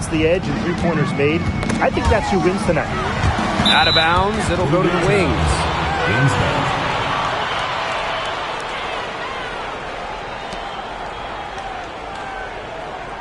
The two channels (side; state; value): both; identical; correlation 1.00